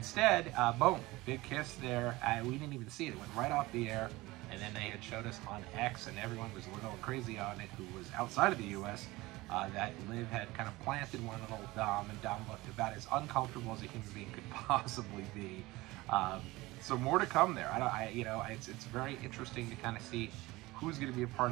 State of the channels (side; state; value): left; quieter; 20.3 dB